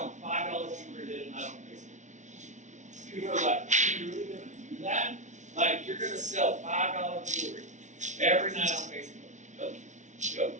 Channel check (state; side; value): late; left; 0.35 ms